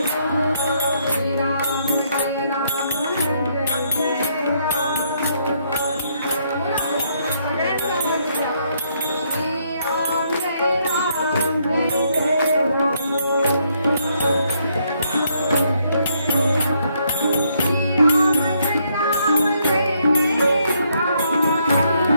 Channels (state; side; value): inverted; both; correlation -0.73